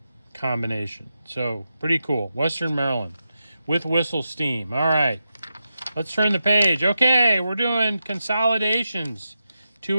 combination. So, pretty cool. Western Maryland with whistle steam. All right. Let's turn the page. Okay, we're doing consolidations.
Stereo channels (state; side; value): inverted; both; correlation -0.89